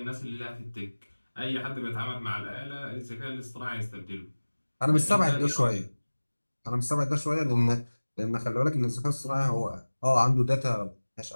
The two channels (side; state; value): both; inverted; correlation -1.00